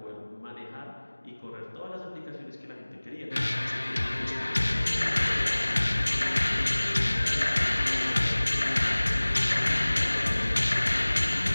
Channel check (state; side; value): inverted; both; correlation -1.00